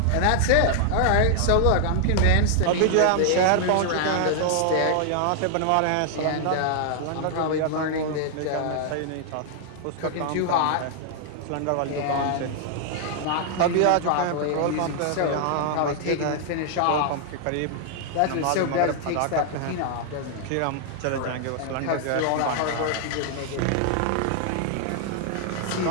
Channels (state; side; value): different; both; correlation 0.00